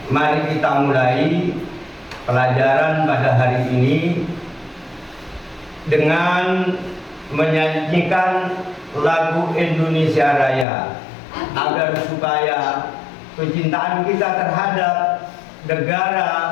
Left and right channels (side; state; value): right; drops out; at 10.7 s